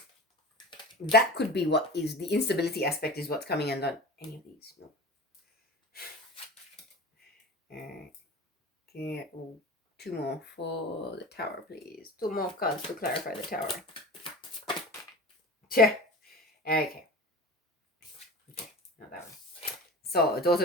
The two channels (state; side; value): normal; both; correlation 0.34